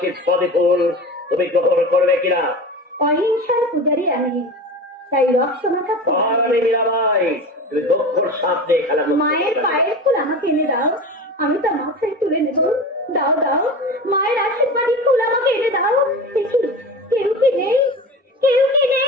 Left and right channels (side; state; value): both; normal; correlation 0.30